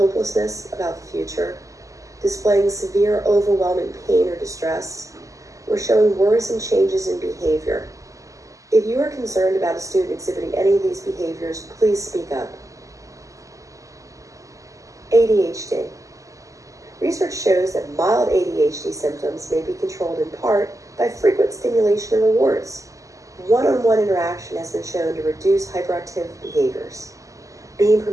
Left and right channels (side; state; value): left; late; 0.16 ms